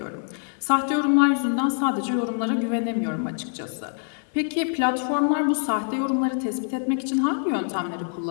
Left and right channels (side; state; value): right; silent; 62 dB below the other